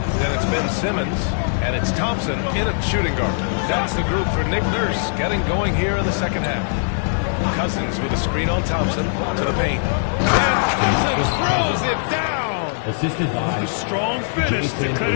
Then it's Ben Simmons. And it's Thompson in at shooting guard. That's the group for Nick Nurse getting going here in the second half. Cousins with a screen on Thompson to the paint. And Cousins throws it down. Assisted by A strong finish to cut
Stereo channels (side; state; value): right; silent; 62 dB below the other